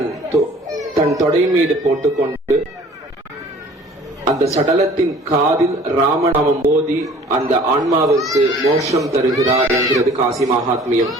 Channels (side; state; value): both; normal; correlation 0.50